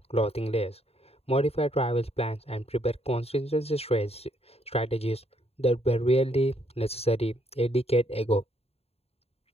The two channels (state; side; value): late; right; 0.29 ms